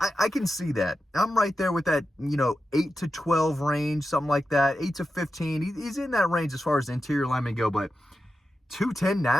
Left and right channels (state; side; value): normal; both; correlation 0.91